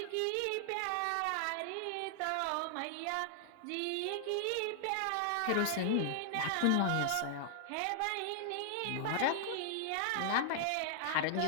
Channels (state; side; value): different; both; correlation -0.01